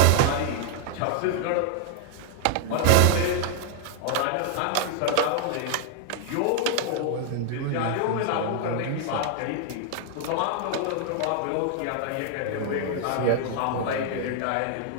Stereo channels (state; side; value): different; both; correlation 0.00